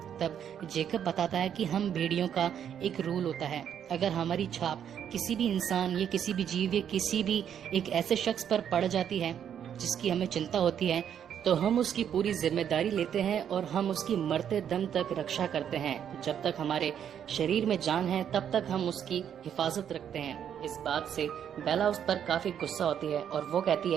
तब जेकब बताता है कि हम भेड़ियों का एक रूल होता है, अगर हमारी छाप किसी भी इंसान या किसी भी जीव या किसी भी एक ऐसे शख्स पर पड़ जाती है जिसकी हमें चिंता होती है तो हम उसकी पूरी जिम्मेदारी लेते हैं और हम उसकी मरते दम तक रक्षा करते हैं। जब तक हमारे शरीर में जान है तब तक हम उसकी हिफाजत रखते हैं। इस बात से बेला उस पर काफी गुस्सा होती है और वो कहती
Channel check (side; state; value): left; quieter; 9.0 dB